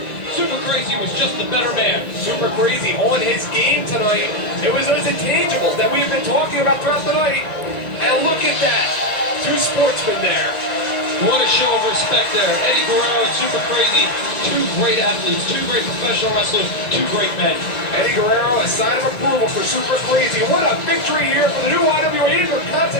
Super Crazy was just the better man. Super Crazy on his game tonight. It was those intangibles that we've been talking about throughout the night. And look at that. 2 sportsmen there. What a show of respect there. Eddie Guerrero and Super Crazy, 2 great athletes, 2 great professional wrestlers, 2 great men. Eddie Guerrero, a sign of approval for Super Crazy. What a victory here for the new IWA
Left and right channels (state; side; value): late; right; 1.9 ms